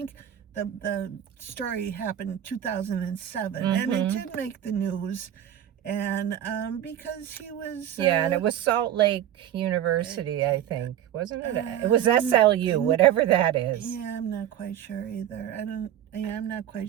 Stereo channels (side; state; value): left; quieter; 11.0 dB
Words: the story happened in 2007, and it did make the news, and because he was and it was Salt Lake University, I think, wasn't it? It was SLU, whatever that is. Yeah, I'm not quite sure either. I'm not quite